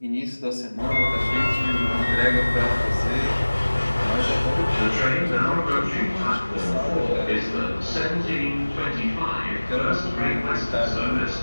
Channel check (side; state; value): both; inverted; correlation -1.00